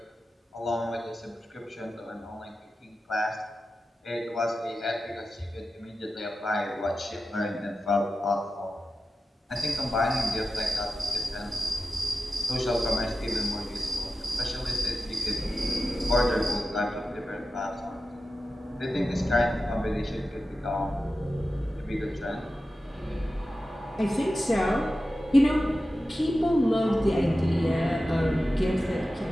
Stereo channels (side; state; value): both; normal; correlation 0.92